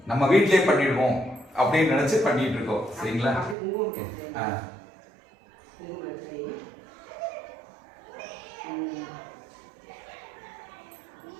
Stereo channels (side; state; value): left; drops out; at 3.6 s